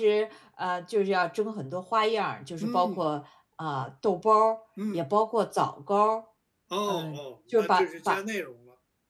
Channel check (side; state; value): both; identical; correlation 1.00